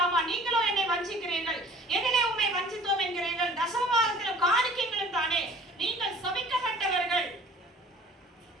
நீங்களோ என்னை வஞ்சிக்கிறீர்கள். எதிலே உம்மை வஞ்சித்தோம் என்கிறீர்கள்? தசமபாகத்திலும் காணிக்கைகளும் தானே. நீங்கள் சபிக்கப்பட்டவர்கள்.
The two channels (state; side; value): normal; both; correlation 0.49